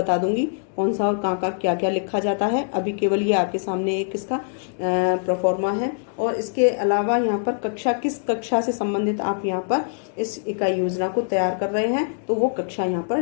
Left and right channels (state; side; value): silent; right; digital silence